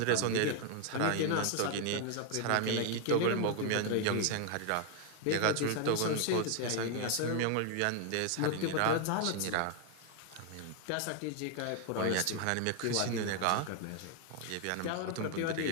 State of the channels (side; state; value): both; different; correlation 0.00